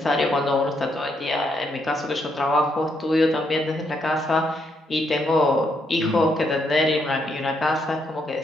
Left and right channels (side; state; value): both; normal; correlation 0.76